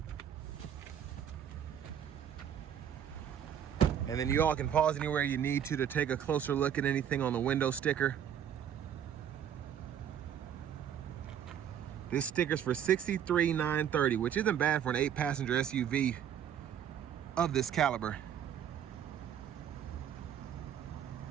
And then you all can pause anywhere you need to take a closer look at anything on the window sticker. This sticker's for $63,930, which isn't bad for an 8-passenger SUV of this caliber.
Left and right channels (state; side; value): quieter; left; 9.3 dB